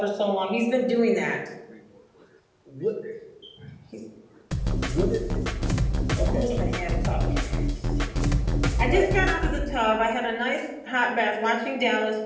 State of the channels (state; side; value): identical; both; correlation 1.00